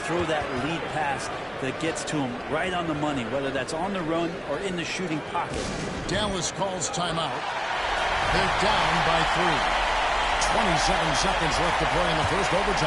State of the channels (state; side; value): identical; both; correlation 1.00